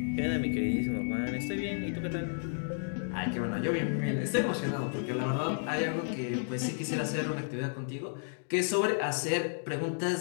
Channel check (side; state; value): right; silent; digital silence